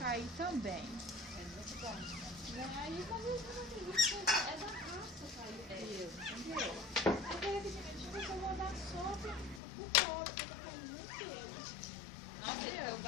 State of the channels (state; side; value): drops out; right; at 9.6 s